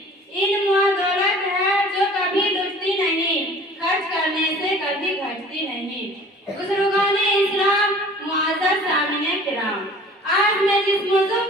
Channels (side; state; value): both; normal; correlation 0.47